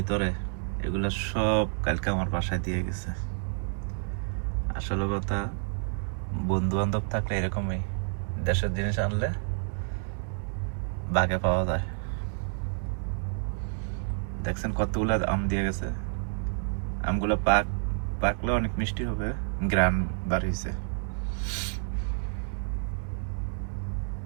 এগুলো সব কালকে আমার বাসায় দিয়ে গেছে। আসলে কথা, বন্ধু বান্ধব থাকলে এরকমই, দেশের জিনিস আনলে বাগে পাওয়া যায়। দেখছেন কতগুলো আম দিয়ে গেছে। আমগুলো পাকলে অনেক মিষ্টি হবে, গ্রান বাড়িয়েছে।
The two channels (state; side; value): silent; left; 58 dB below the other